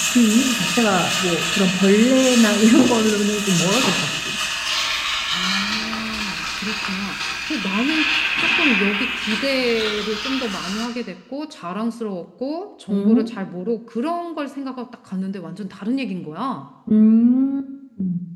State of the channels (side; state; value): both; identical; correlation 1.00